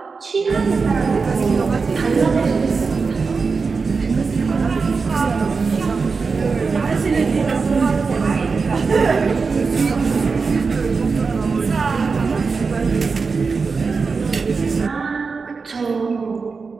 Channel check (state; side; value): quieter; left; 4.7 dB